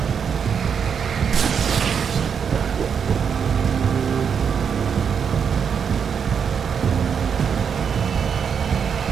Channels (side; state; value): left; quieter; 7.0 dB